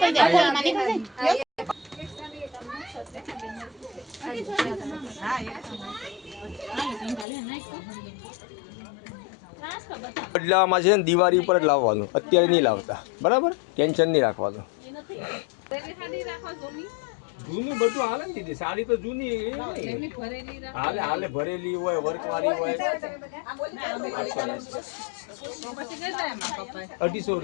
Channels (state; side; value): drops out; right; at 7.2 s